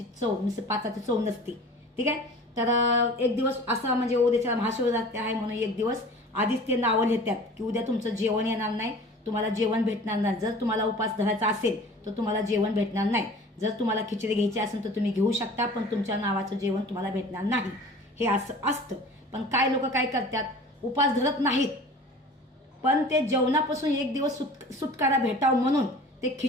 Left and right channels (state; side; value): normal; both; correlation 0.43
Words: चव, नुसतं पाताची चव नसते. ठीक आहे. तर एक दिवस असा म्हणजे उद्याच्या महाशिवरात्र आहे म्हणून एक दिवस आधीच ते नावं लिहितात की उद्या तुमचं जेवण येणार नाही, तुम्हाला जेवण भेटणार नाही. जर तुम्हाला उपास धरायचा असेल तर तुम्हाला जेवण भेटणार नाही. जर तुम्हाला खिचडी घ्यायची असेल तर तुम्ही घेऊ शकता, पण तुमच्या नावाचं जेवण तुम्हाला भेटणार नाही. हे असं असतं. पण काय लोक काय करतात, उपास धरत नाहीत, पण ते जेवणापासून एक दिवस सुटकारा भेटावं म्हणून ते